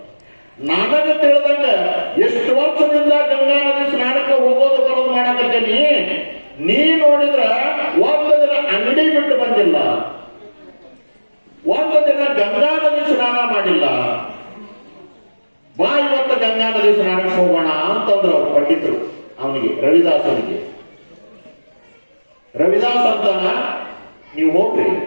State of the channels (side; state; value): both; inverted; correlation -1.00